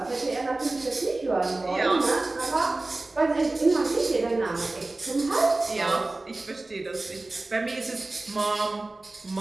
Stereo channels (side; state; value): left; quieter; 3.1 dB